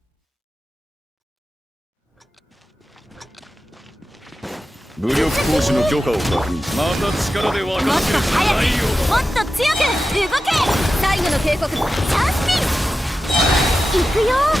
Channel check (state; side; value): normal; both; correlation 0.92